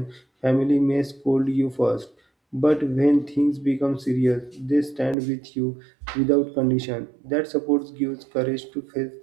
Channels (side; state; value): left; drops out; at 5.2 s